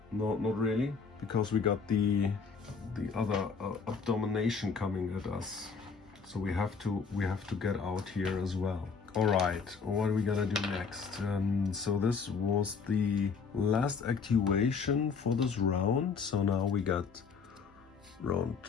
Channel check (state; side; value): quieter; right; 5.5 dB